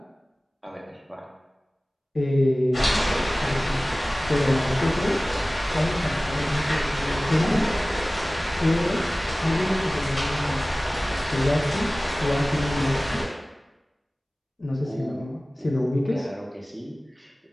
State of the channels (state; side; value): normal; both; correlation 0.98